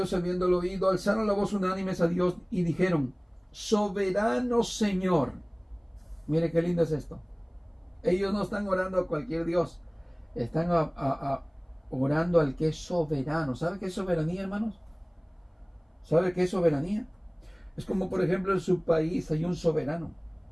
habiéndolo oído, alzaron la voz unánimes a Dios y dijeron, soberano Señor. Mire qué lindo es esto. Ellos no están orando a cualquier Dios, están orando al que es soberano. ¿Sabe qué es soberanía, hermanos? ¿Sabe qué es soberanía? Es como, por ejemplo, en su país hay un soberano.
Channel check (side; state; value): both; identical; correlation 1.00